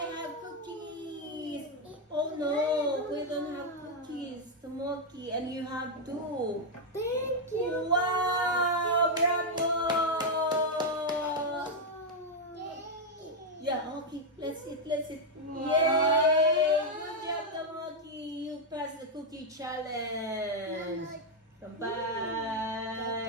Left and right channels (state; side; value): normal; both; correlation 0.01